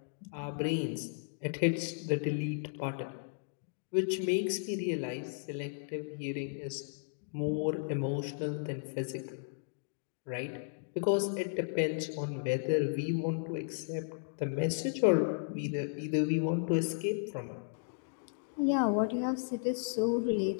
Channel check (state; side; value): silent; right; digital silence